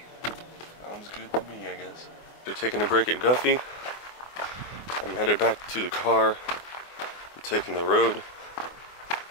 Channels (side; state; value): right; late; 24 ms